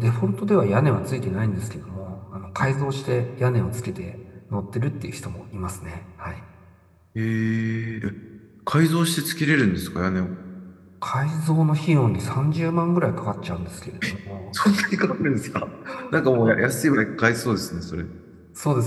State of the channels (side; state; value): both; identical; correlation 1.00